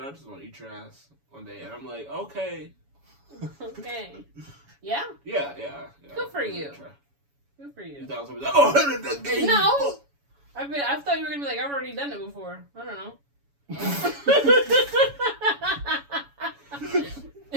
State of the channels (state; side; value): late; left; 7.1 ms